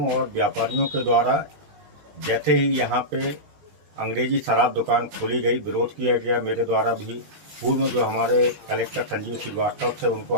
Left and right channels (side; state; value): left; late; 20 ms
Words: और व्यापारियों के द्वारा जैसे ही यहाँ पे अंग्रेजी शराब दुकान खोली गई, विरोध किया गया। मेरे द्वारा भी पूर्व में जो हमारे कलेक्टर संजीव श्रीवास्तव थे उनको